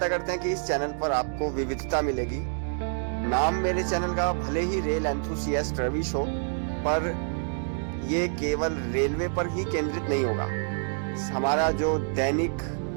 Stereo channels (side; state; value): left; silent; 60 dB below the other